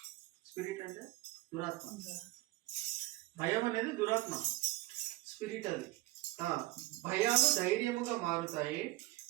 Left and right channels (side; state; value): left; quieter; 19.1 dB